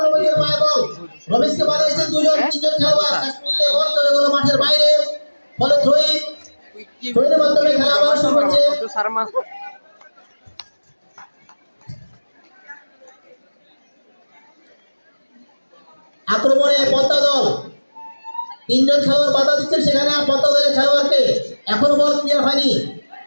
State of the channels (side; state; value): both; inverted; correlation -1.00